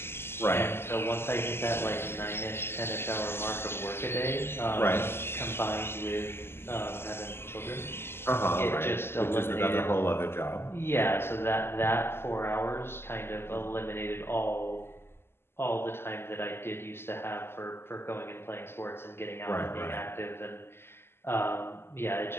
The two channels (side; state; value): right; late; 0.12 ms